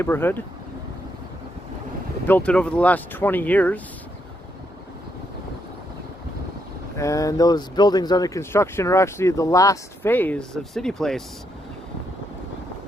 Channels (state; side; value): normal; both; correlation 0.78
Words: They built it over the last 20 years. And those buildings under construction are actually the last phase of CityPlace.